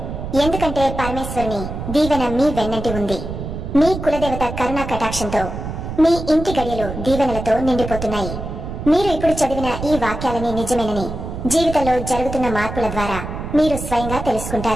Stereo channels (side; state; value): right; noise; rumble, 7 dB below the sound